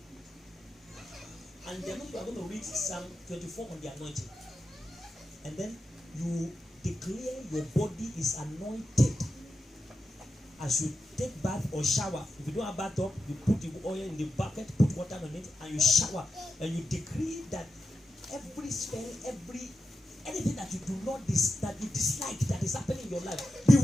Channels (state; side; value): normal; both; correlation 0.89